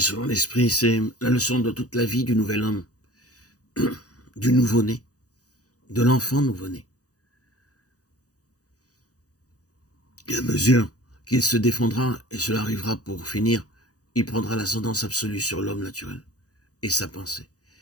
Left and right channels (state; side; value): late; right; 0.67 ms